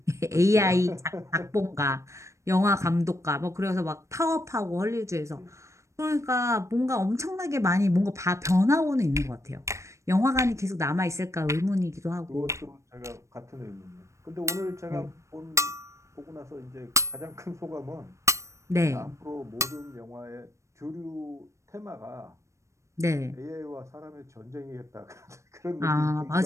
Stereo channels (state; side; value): late; left; 0.15 ms